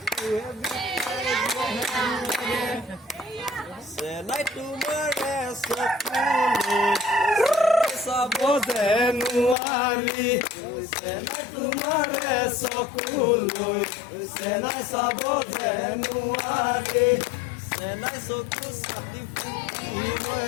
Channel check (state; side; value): drops out; right; at 9.6 s